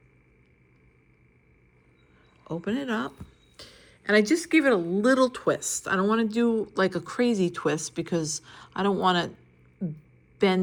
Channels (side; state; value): both; identical; correlation 1.00